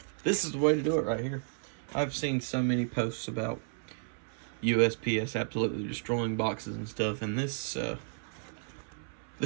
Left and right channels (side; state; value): left; silent; 56 dB below the other